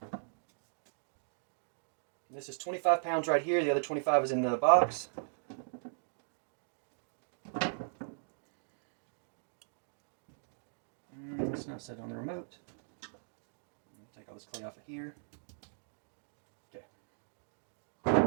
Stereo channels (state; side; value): silent; left; digital silence